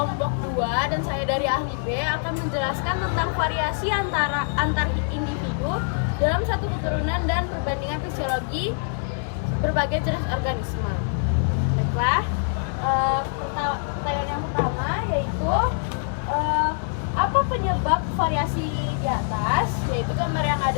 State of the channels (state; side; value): silent; right; digital silence